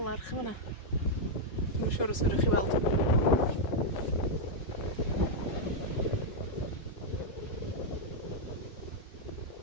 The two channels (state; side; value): late; right; 5.4 ms